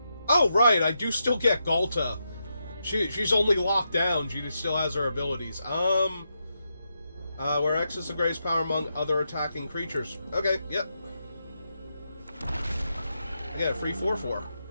Oh, right, I do still get Galta. She's only locked down. She still has her abilities. Where X is the greatest power among other attacking creatures. Okay, yep. I get a free 4/4.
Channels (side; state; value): both; inverted; correlation -0.85